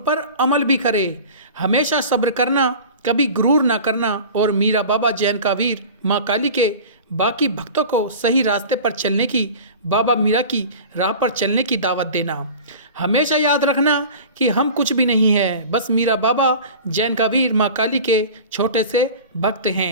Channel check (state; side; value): inverted; both; correlation -0.37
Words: अमल भी करे। हमेशा सब्र करना, कभी गुरूर ना करना और मीरा बाबा जैन का वीर, माँ काली के बाकी भक्तों को सही रास्ते पर चलने की, बाबा मीरा की राह पर चलने की दावत देना। हमेशा याद रखना कि हम कुछ भी नहीं है, बस मीरा बाबा जैन का वीर, माँ काली के छोटे से भक्त